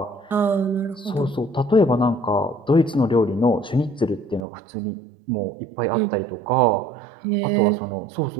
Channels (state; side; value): drops out; left; at 4.4 s